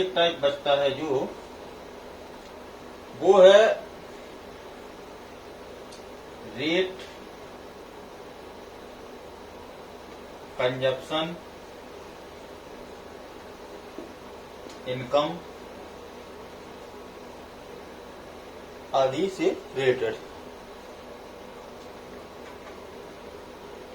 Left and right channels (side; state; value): both; identical; correlation 1.00